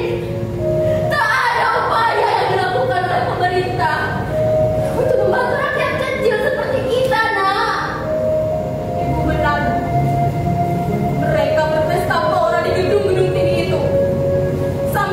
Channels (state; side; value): identical; both; correlation 1.00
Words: Tak ada upaya yang dilakukan oleh pemerintah untuk membantu rakyat kecil seperti kita, Nak. Ibu benar. Mereka berpesta pora di gedung-gedung tinggi itu